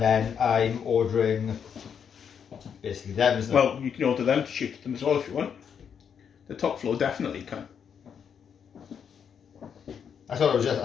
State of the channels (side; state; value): right; quieter; 7.5 dB